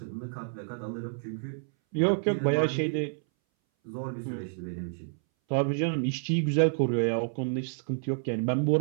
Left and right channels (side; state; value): left; silent; 58 dB below the other